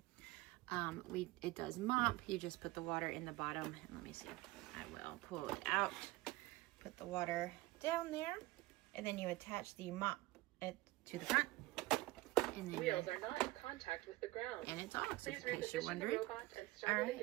It does mop. You just put the water in the bottom. And let me see. I will pull it out. Put the water down there, and then you attach the mop to the front. And then wheels are not in contact with the ground. And it's off. Please reposition the robot and start it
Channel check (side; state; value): left; quieter; 19.7 dB